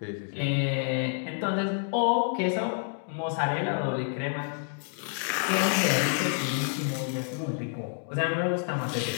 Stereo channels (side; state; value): right; silent; 58 dB below the other